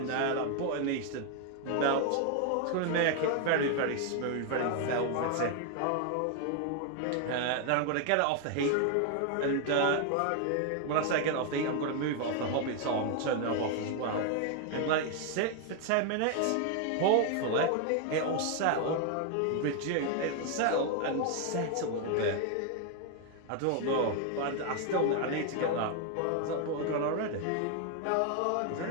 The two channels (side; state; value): both; different; correlation 0.00